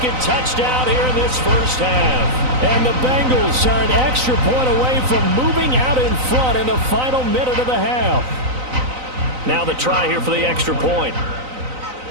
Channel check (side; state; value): left; late; 3.9 ms